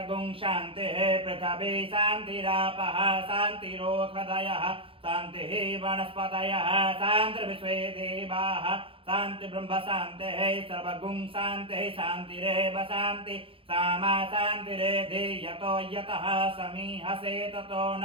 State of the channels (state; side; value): late; left; 0.26 ms